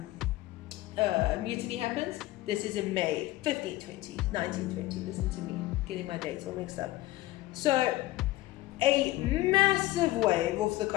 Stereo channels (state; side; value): quieter; right; 17.5 dB